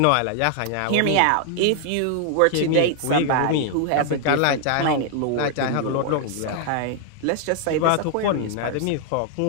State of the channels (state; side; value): different; both; correlation 0.00